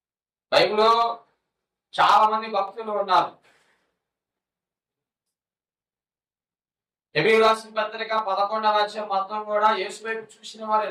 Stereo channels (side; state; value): both; identical; correlation 1.00